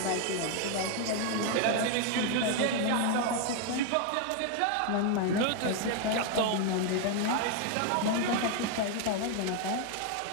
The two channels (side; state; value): both; different; correlation 0.00